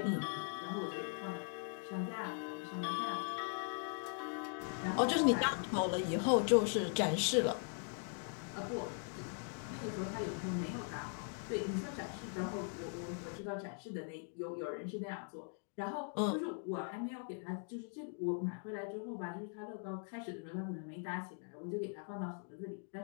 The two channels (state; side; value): silent; right; 51 dB below the other